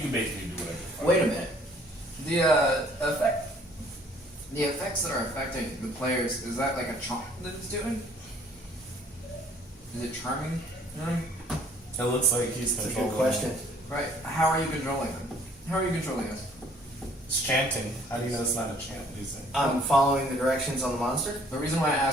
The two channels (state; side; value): normal; both; correlation 0.58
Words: basically do whatever. Wait a minute. The effects that are affecting the players, is that like a charm that it's doing? Is it charming? it looks like he's That's a controlling. good question. Right. How are you controlling them? How are you controlling us? It's chanting. How do you know it's not a chant? What do you think? I'm following the directions on the monster. The reason why I